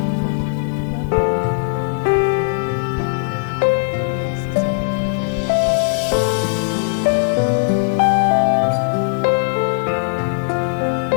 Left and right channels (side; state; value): right; silent; digital silence